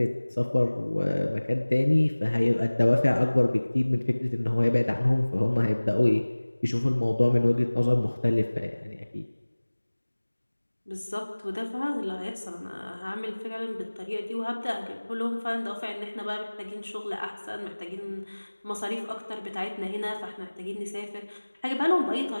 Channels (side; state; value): both; inverted; correlation -1.00